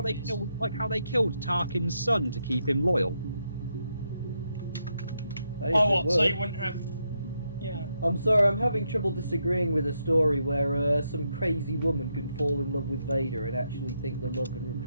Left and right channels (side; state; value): both; inverted; correlation -0.81